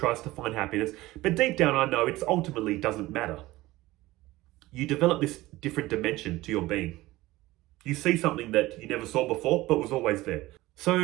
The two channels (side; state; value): left; quieter; 18.3 dB